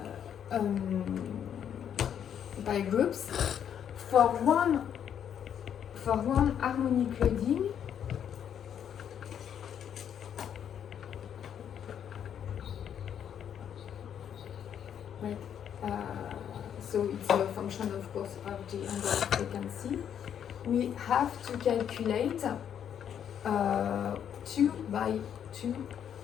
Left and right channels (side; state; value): right; quieter; 8.9 dB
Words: pile groups, for one harmonic loading, right, so it's a function of course of the angle of frequency, we have to calculate 2 by 2